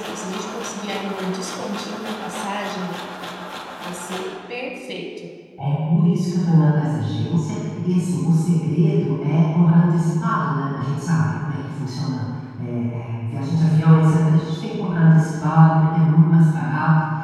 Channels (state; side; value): identical; both; correlation 1.00